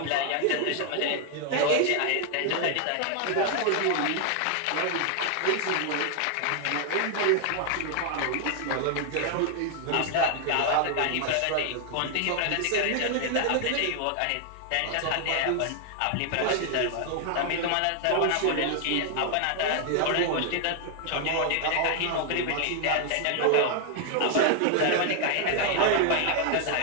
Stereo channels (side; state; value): both; different; correlation 0.00